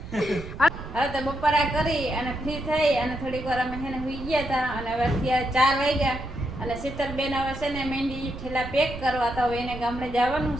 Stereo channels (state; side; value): noise; right; rumble, 11 dB below the sound